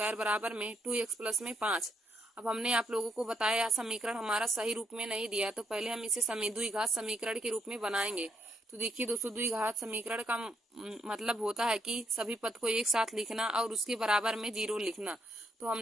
बराबर में 2x प्लस में 5। अब हमने आप लोगों को बताया समीकरण हमारा सही रूप में नहीं दिया, तो पहले हम इसे द्विघात समीकरण के रूप में बनाएंगे। तो देखिए दोस्तों द्विघात समीकरण का मतलब होता है कि सभी पद को एक साथ लिखना और उसके बराबर में 0 लिखना। तो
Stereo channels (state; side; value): normal; both; correlation 0.74